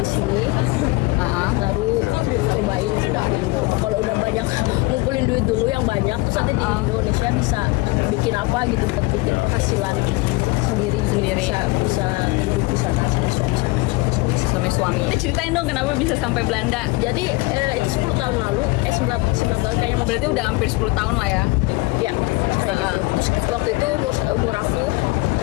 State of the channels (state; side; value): quieter; right; 23.2 dB